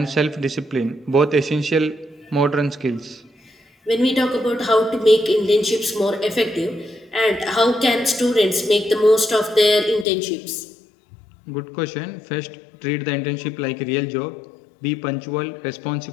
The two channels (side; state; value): right; drops out; at 10.1 s